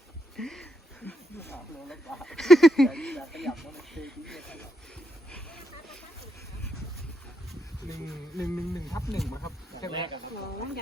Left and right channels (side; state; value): both; normal; correlation 0.79